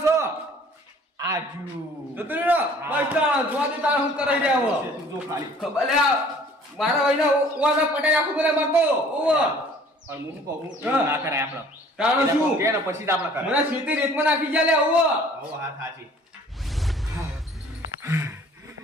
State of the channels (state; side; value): normal; both; correlation 0.53